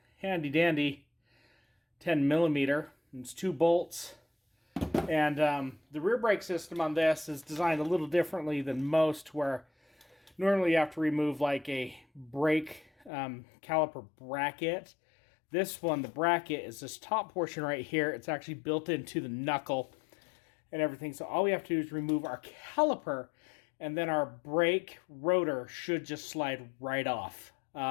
handy dandy 10 millimeter. It's 2 bolts. And the rear brake system on this is designed a little differently than most, where normally you have to remove like a brake caliper bracket. This one, the bracket, is this top portion right here. It's actually built into the knuckle and everything. So all we have to do is remove our caliper, and then our brake rotor should just slide right off.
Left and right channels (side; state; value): right; drops out; at 13.1 s